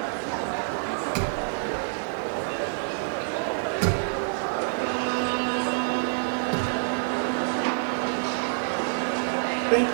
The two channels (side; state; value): left; silent; digital silence